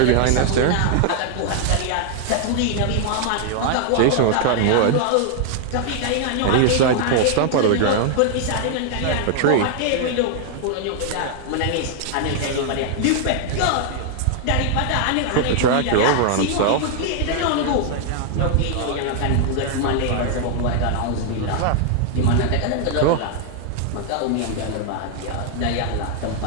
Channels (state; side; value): different; both; correlation 0.00